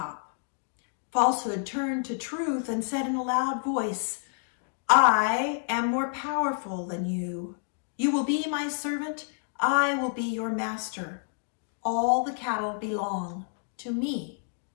Falsehood turned to Truth and said in a loud voice, "I am more powerful than you. You will be my servant. I will be your master. All the cattle belong to me."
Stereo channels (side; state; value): right; silent; digital silence